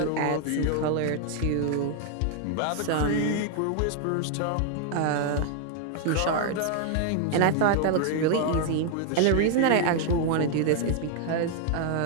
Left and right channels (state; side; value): different; both; correlation 0.00